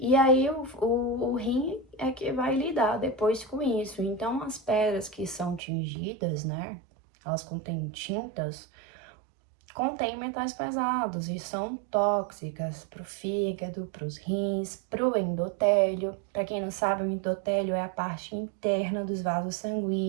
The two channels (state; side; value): drops out; left; at 5.6 s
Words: aí o rim é que vai lidar depois com isso. Então as pedras que são tingidas, né, elas contêm tintas, contém metais pesados e são tóxicas para o fígado, para os rins, para o endotélio. Para quem não sabe, o endotélio é a parte interna dos vasos